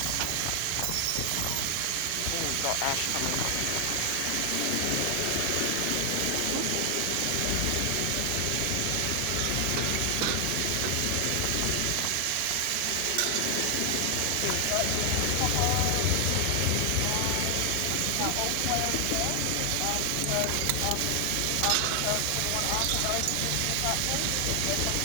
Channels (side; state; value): both; different; correlation 0.00